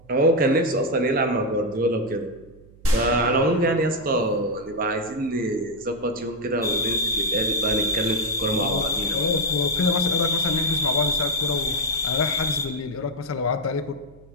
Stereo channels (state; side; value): noise; right; hum, 25 dB below the sound